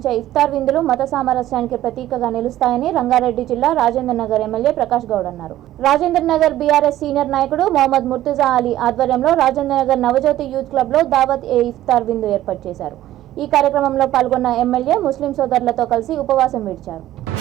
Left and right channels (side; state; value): left; quieter; 13.8 dB